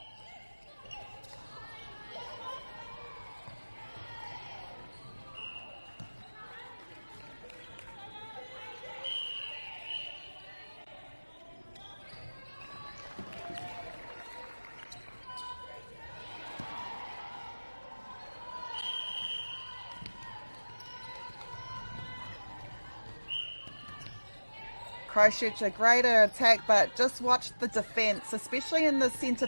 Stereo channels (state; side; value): inverted; both; correlation -1.00